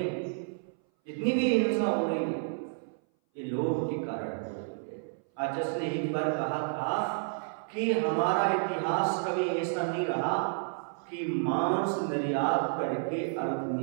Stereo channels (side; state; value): left; silent; 57 dB below the other